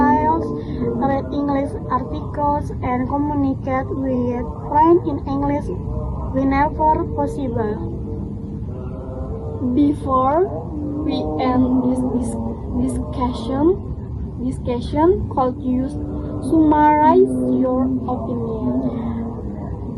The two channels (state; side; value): identical; both; correlation 1.00